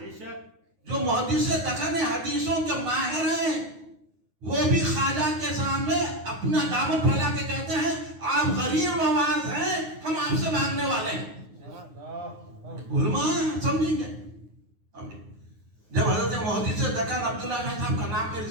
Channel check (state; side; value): late; left; 9.5 ms